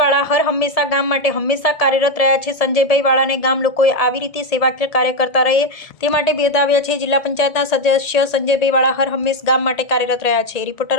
વાળા હર હંમેશા ગામ માટે હંમેશા કાર્યરત રહ્યા છે। સંજયભાઈ વાળાને ગામ લોકોએ આવી રીતે સેવાકીય કાર્ય કરતા રહે તે માટે બિરદાવ્યા છે। જિલ્લા પંચાયતના સદસ્ય સંજયભાઈ વાળા હર હંમેશ ગામ માટે કાર્યરત રહ્યા છે। રિપોર્ટર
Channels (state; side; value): late; right; 1.7 ms